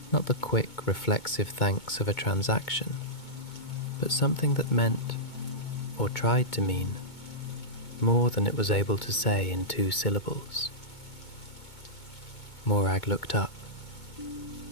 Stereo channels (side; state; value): right; late; 2.2 ms